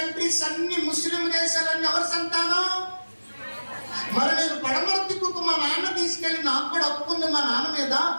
అన్ని, ముస్లిం దేశాలన్నీ ఎవరి సంతానం? మరి నేను పడమర దిక్కుకు మా నాన్న తీసుకెళ్ళి, నాకు కూడా హక్కు ఉంది మా నాన్న మీద,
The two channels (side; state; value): both; inverted; correlation -1.00